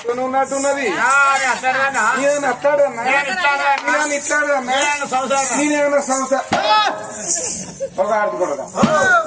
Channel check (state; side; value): identical; both; correlation 1.00